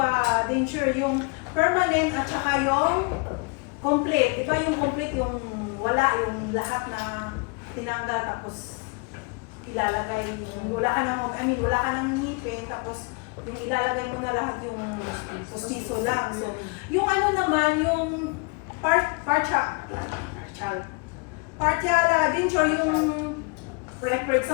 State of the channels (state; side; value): quieter; right; 31.3 dB